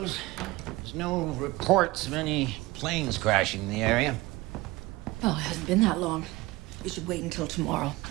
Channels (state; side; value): quieter; left; 20.6 dB